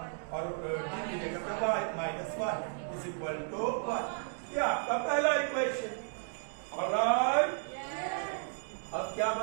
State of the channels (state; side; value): silent; left; digital silence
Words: और d की जगह पे y minus 1 is equal to 1. ये आपका पहला इक्वेशन. Alright? अब क्या